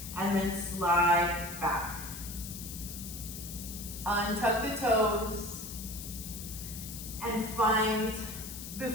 and then slide back. Untuck the toes, and find,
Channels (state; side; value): noise; left; hiss, 10 dB below the sound